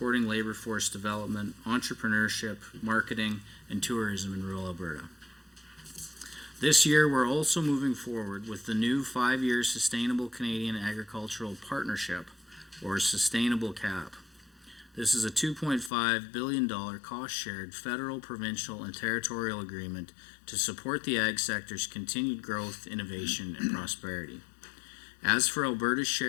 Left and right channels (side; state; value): right; drops out; at 15.9 s